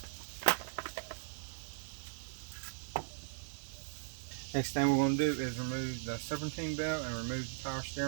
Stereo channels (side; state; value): left; silent; digital silence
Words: Next thing we're going to do is remove the Serpentine belt and remove the power